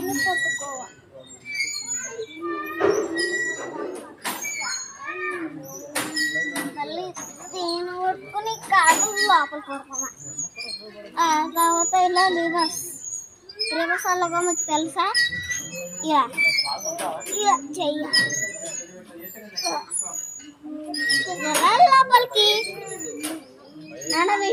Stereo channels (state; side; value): identical; both; correlation 1.00